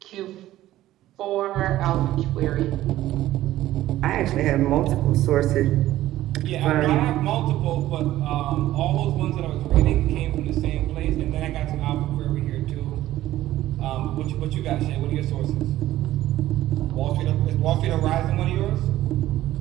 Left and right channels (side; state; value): left; quieter; 14.6 dB